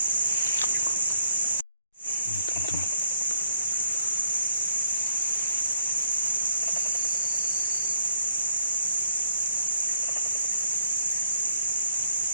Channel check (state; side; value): inverted; both; correlation -0.70